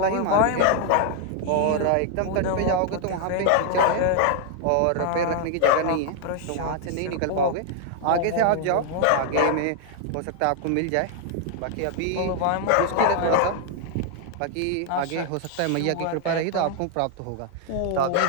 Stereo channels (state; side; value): different; both; correlation 0.00